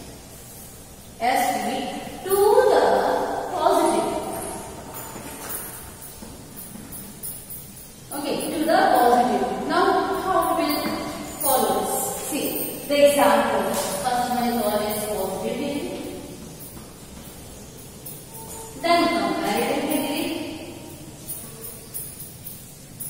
ST to the positive. Okay, to the positive. Now, how we will follow this? See the example. First one is always positive degree, then comparative degree,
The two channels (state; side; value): identical; both; correlation 1.00